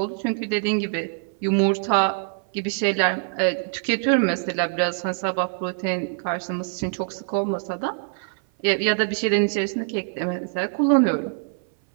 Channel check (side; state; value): left; silent; 58 dB below the other